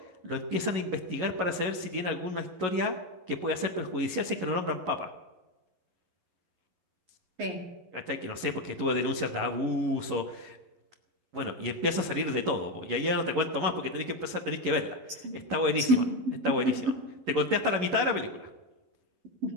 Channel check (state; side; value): late; left; 11 ms